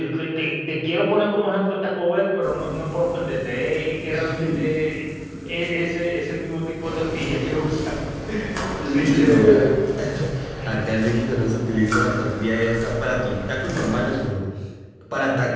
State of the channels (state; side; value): identical; both; correlation 1.00